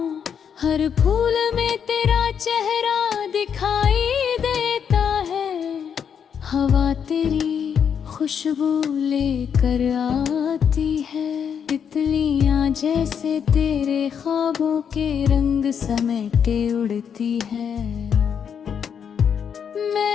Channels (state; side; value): quieter; right; 7.6 dB